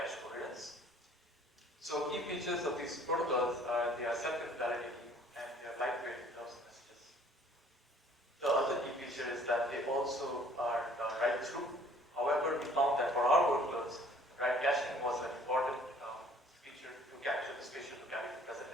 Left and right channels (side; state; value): both; normal; correlation 0.55